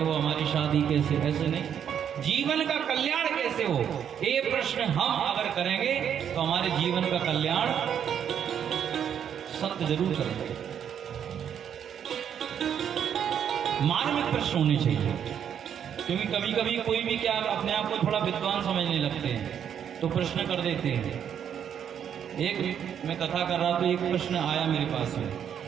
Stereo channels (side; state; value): left; quieter; 8.7 dB